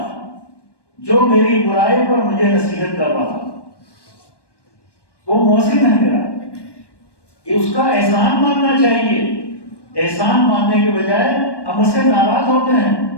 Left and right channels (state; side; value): late; right; 1.1 ms